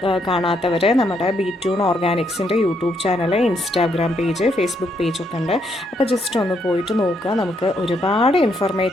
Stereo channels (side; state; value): both; normal; correlation 0.75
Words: കാണാത്തവർ നമ്മുടെ ബി2 ഓർഗാനിക്സിൻ്റെ YouTube channel, Instagram page, Facebook പേജൊക്കെ ഉണ്ട്. അപ്പോൾ ജസ്റ്റ് ഒന്ന് പോയിട്ട് നോക്കുക. നമുക്ക് ഒരുപാട്